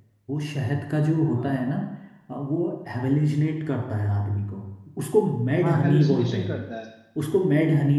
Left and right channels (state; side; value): identical; both; correlation 1.00